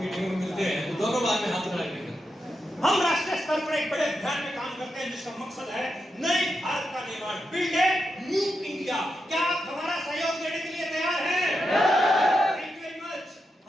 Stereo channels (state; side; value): normal; both; correlation 0.86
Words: में मिलते हैं तो दोनों बार में हाथ खड़ा करेंगे। हम राष्ट्रीय स्तर पर एक बड़े अभियान में काम करते हैं जिसका मकसद है नए भारत का निर्माण, बिल्ड ए न्यू इंडिया। क्या आप हमारा सहयोग देने के लिए तैयार हैं? Thank you very much.